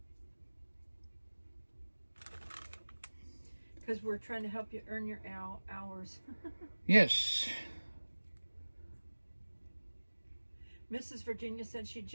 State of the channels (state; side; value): inverted; both; correlation -1.00